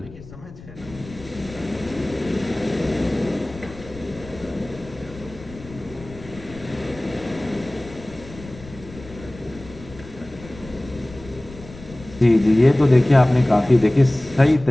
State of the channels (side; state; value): left; noise; rumble, 17 dB below the sound